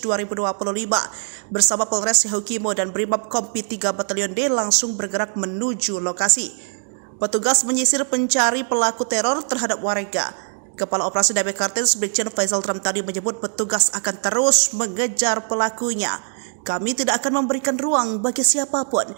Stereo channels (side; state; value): left; silent; digital silence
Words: 2025 bersama Polres Yahukimo dan Brimob Kompi 3 Batalyon D langsung bergerak menuju lokasi. Petugas menyisir pencari pelaku teror terhadap warga. Kepala Operasi Damai Cartenz Brigjen Faisal tadi menyebut petugas akan terus mengejar pelakunya. Kami tidak akan memberikan ruang bagi siapapun